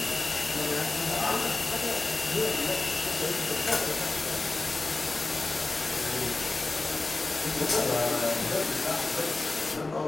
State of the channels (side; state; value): right; quieter; 3.3 dB